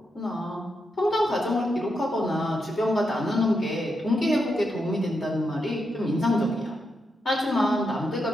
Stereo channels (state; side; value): normal; both; correlation 0.84